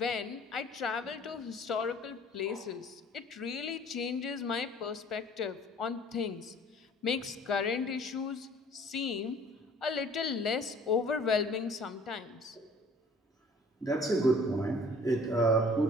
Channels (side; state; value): both; normal; correlation 0.52